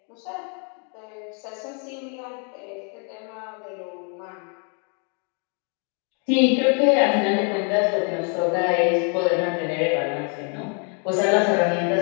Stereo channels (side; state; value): right; quieter; 39.7 dB